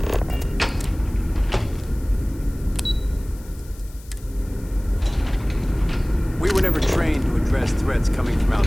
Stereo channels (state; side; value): noise; left; hiss, 24 dB below the sound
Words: We were never trained to address threats coming from